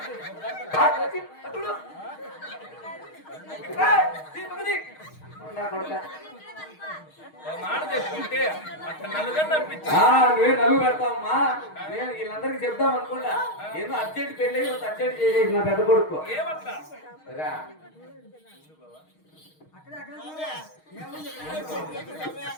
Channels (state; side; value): late; right; 6.4 ms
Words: మాట చెప్పుకుంటే అక్కడ నలుగురు అనిపించు. నువ్వే నలుగు పెడతావమ్మా నేను వీళ్ళందరికీ చెప్దాం అనుకుంటా ఏదో అర్జెంట్ పెళ్ళి అర్జెంట్ చేసేసి నా పెద్ద కొడుకు ఏమట్లా రా